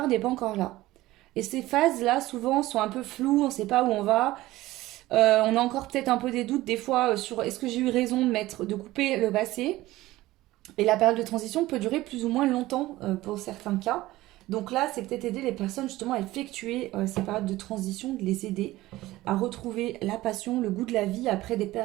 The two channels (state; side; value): quieter; left; 17.3 dB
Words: n'est pas encore là. Et ces phases-là, souvent, sont un peu floues, on ne sait pas où on va. On a encore peut-être un peu des doutes des fois sur est-ce que j'ai eu raison de couper le passé. Et la période de transition peut durer plus ou moins longtemps pour certains cas. Donc là, c'est peut-être aider les personnes justement à effectuer ces périodes de transition, de les aider à retrouver la passion, le goût de la vie après des